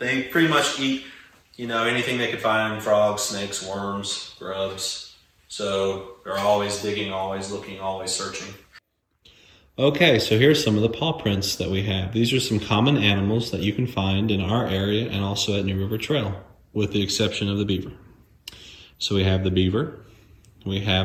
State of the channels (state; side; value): identical; both; correlation 1.00